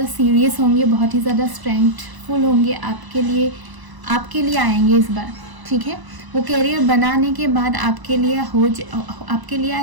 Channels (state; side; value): late; left; 1.0 ms